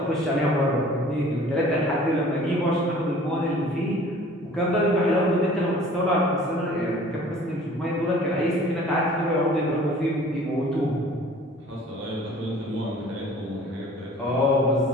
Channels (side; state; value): both; normal; correlation 0.49